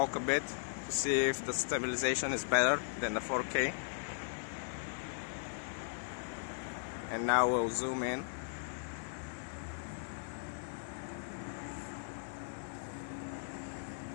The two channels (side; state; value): right; silent; digital silence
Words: a bit to see if the stabilization is better than the 4K. And now we'll zoom in.